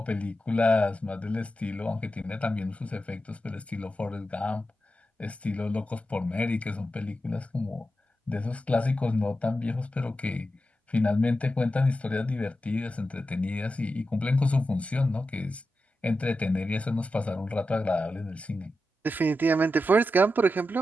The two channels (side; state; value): both; normal; correlation 0.90